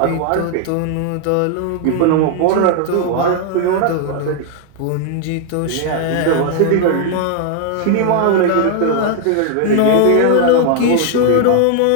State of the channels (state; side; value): different; both; correlation 0.00